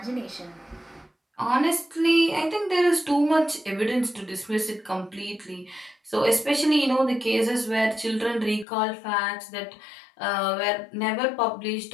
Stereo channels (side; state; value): right; drops out; at 8.7 s